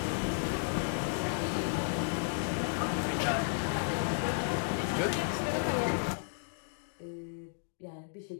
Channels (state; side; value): silent; right; digital silence